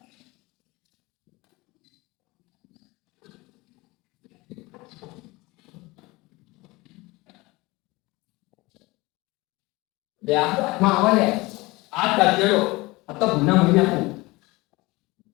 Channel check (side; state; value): right; quieter; 22.3 dB